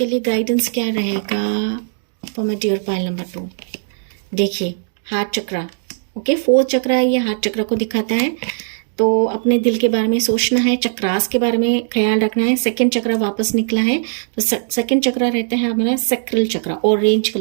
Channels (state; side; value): silent; left; digital silence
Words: लिए गाइडेंस क्या रहेगा for my dear pile number 2। देखिए, हार्ट चक्रा, ओके, 4th चक्रा है, ये हार्ट चक्रा को दिखाता है। तो अपने दिल के बारे में सोचना है, चक्रास के बारे में ख्याल रखना है। 2nd चक्रा वापस निकला है, तो 2nd चक्रा रहता है हमारा सैक्रल चक्रा, ऑरेंज